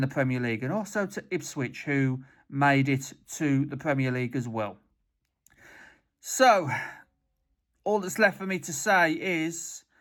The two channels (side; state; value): both; identical; correlation 1.00